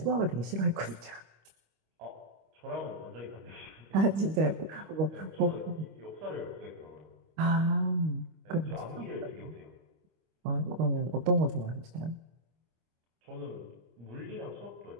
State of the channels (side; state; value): left; late; 25 ms